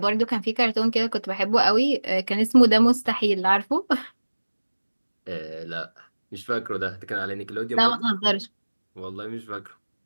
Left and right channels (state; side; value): inverted; both; correlation -1.00